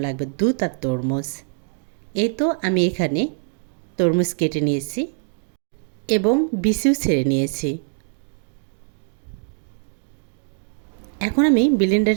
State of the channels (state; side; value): silent; left; 56 dB below the other